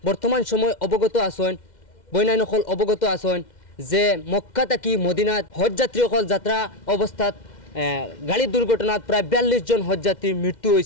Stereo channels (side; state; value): right; late; 2.1 ms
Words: বর্তমান সময় অবগত আছেন, বইনাইনসকল অবগত আছেন যে মক্কা থাকি মদিনাত হজযাত্রীসকল যাত্রা অবস্থাত গাড়ির দুর্ঘটনাত প্রায় 42 জন হজযাত্রীর মৃত্যু